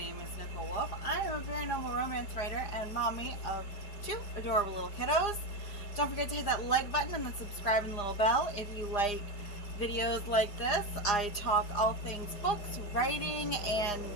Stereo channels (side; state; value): right; late; 4.9 ms